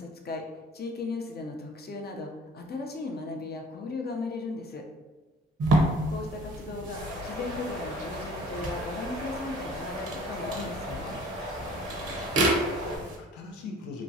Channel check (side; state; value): both; normal; correlation 0.50